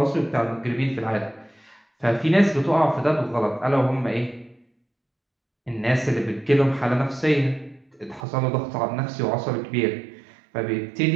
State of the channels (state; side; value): drops out; left; at 8.2 s